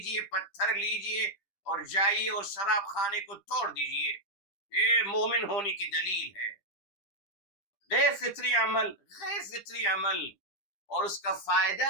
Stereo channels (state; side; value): late; right; 10 ms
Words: پتھر لیجئے اور جائیے اور شراب خانے کو توڑ دیجئے، یہ مومن ہونے کی دلیل ہے۔ غیر فطری عمل، غیر فطری عمل، اور اس کا فائدہ